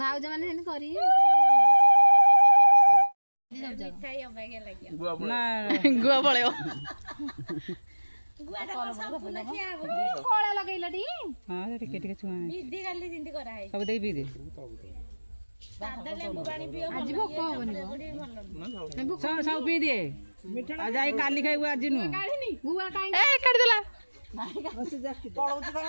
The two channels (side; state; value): both; inverted; correlation -1.00